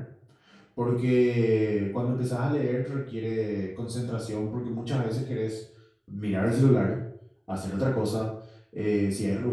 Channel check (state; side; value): identical; both; correlation 1.00